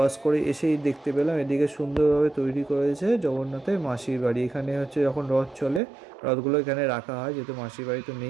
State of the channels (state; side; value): drops out; left; at 5.8 s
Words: করে এসেই দেখতে পেলাম এদিকে সুন্দরভাবে তৈরি করেছে জগন্নাথের মাসির বাড়ি। এখানে হচ্ছে যখন রথ চলে, রথগুলো এখানে রাখা হয়, যেহেতু মাসির বাড়ি তো